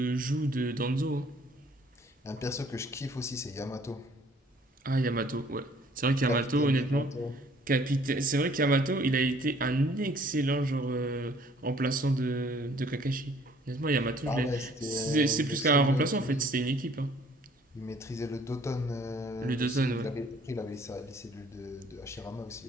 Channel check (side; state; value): both; normal; correlation 0.58